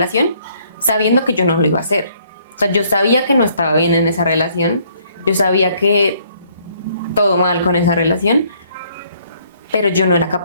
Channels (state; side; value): inverted; both; correlation -0.65